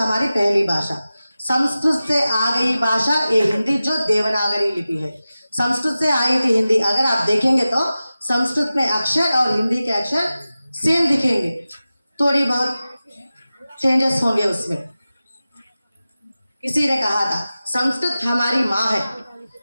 पहली भाषा, संस्कृत से आ गई भाषा ये हिंदी, जो देवनागरी लिपि है, संस्कृत से आई थी हिंदी। अगर आप देखेंगे तो संस्कृत में अक्षर और हिंदी के अक्षर सेम दिखेंगे, थोड़ी बहुत चेंजेस होंगे उसमें। किसी ने कहा था, संस्कृत हमारी माँ है,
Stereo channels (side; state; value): both; inverted; correlation -0.95